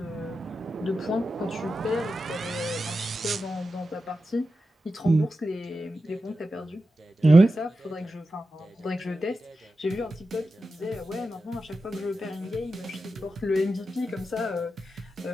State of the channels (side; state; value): both; normal; correlation 0.91